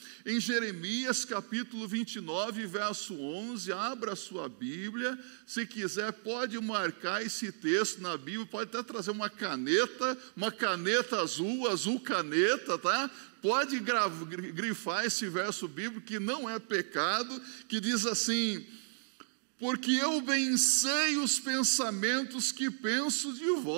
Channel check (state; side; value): silent; left; digital silence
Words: Em Jeremias capítulo 29, verso 11, abra a sua Bíblia, se quiser pode marcar esse texto na Bíblia, pode até trazer uma caneta azul, azul caneta, tá? Pode grifar esse verso bíblico, que não é pecado, que diz assim: porque eu bem sei os pensamentos que penso de